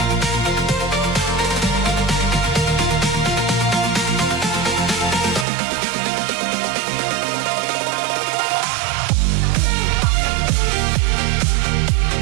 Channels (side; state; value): left; drops out; at 5.5 s